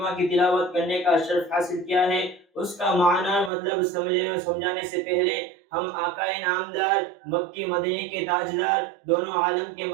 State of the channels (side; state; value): left; drops out; at 3.5 s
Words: کی تلاوت کرنے کا شرف حاصل کیا ہے، اس کا معنی مطلب سمجھانے سے پہلے ہم آقا نامدار، مکی مدینے کے تاجدار، دونوں عالم کے